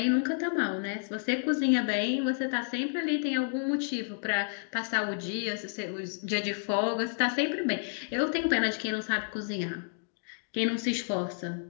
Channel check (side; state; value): right; silent; digital silence